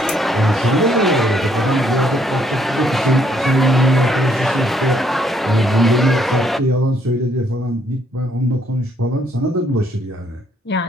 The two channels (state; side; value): normal; both; correlation 0.69